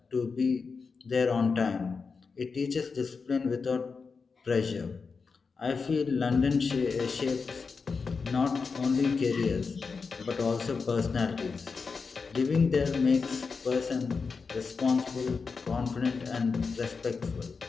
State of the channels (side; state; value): right; quieter; 4.9 dB